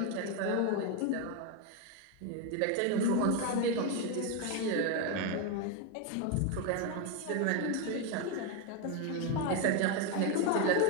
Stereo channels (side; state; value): both; different; correlation 0.02